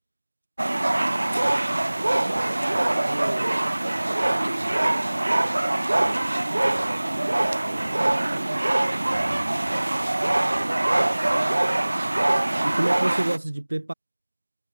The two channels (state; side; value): inverted; both; correlation -1.00